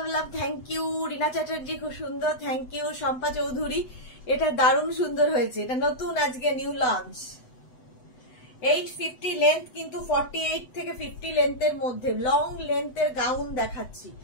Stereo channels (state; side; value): late; right; 7.9 ms